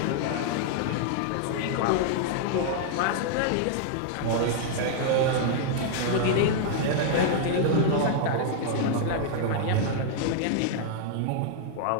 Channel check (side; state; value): both; different; correlation -0.01